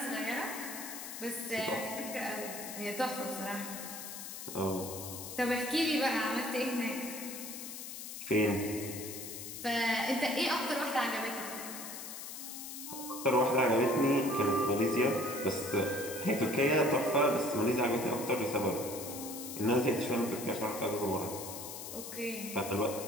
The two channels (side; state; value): left; noise; hiss, 9 dB below the sound